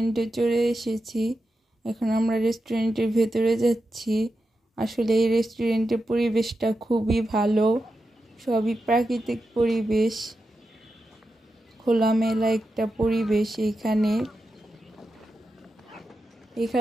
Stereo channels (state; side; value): normal; both; correlation 0.89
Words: চলে এসেছি। এখন আমরা রেস্টুরেন্টের ভেতরে যাচ্ছি। আসলে এই রেস্টুরেন্টের পরিবেশটা খুবই ভালো, সবই প্রাকৃতিক পরিবেশ, খোলামেলা একটা পরিবেশ।